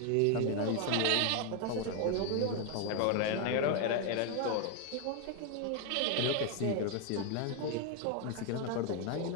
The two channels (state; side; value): different; both; correlation 0.01